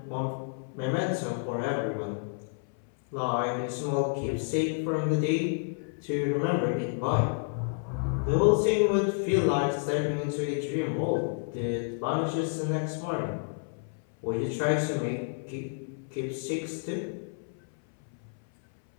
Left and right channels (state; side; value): silent; right; 58 dB below the other